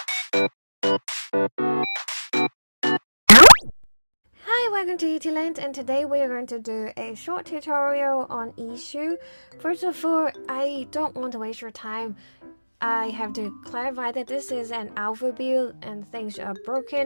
welcome to iiSU, and today we are going to do a short tutorial on iiSU. First of all, I don't want to waste your time. I have to clarify that this is an alpha build and things are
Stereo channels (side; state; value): both; inverted; correlation -1.00